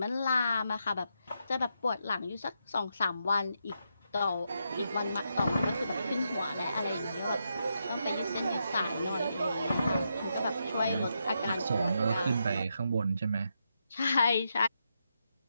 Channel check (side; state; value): both; inverted; correlation -0.82